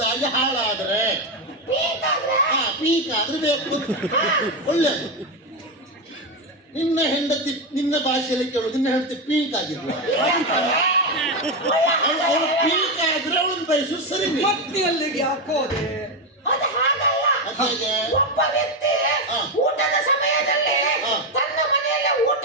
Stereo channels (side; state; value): both; normal; correlation 0.10